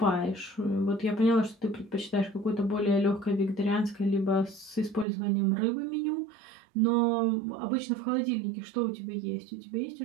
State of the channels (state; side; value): drops out; left; at 5.1 s